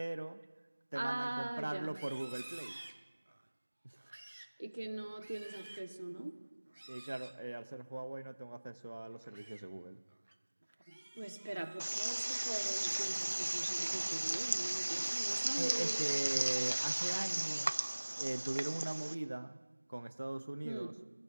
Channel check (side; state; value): both; inverted; correlation -1.00